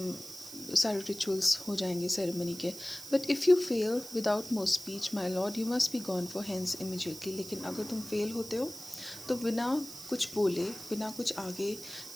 सारे रिचुअल्स हो जाएंगे सेरेमनी के. But if you fail without more speech my lord you must be gone for hence immediately. लेकिन अगर तुम फेल होते हो तो बिना कुछ बोले, बिना कुछ आगे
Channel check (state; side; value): noise; right; hiss, 13 dB below the sound